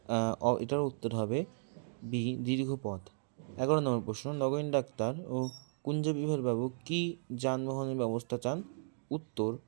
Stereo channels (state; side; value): silent; left; digital silence